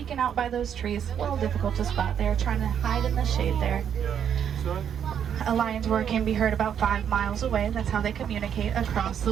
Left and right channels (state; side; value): quieter; left; 8.6 dB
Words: out by those trees. A little difficult to spot. They're trying to hide in the shade there. A lion's roar can be heard about 5 miles away. That's how they communicate across the